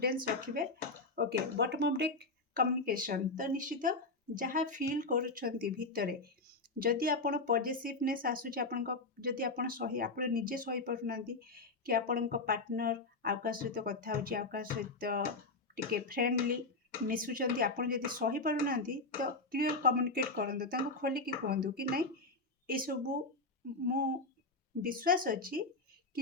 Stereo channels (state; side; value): quieter; right; 3.4 dB